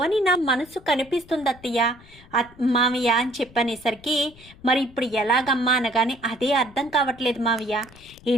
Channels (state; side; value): noise; left; rumble, 24 dB below the sound